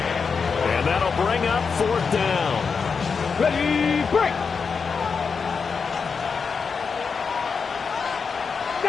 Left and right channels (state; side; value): quieter; right; 5.5 dB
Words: And that'll bring up 4th down. Ready, break.